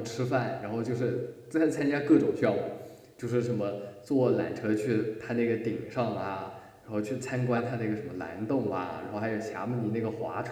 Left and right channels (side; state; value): both; identical; correlation 1.00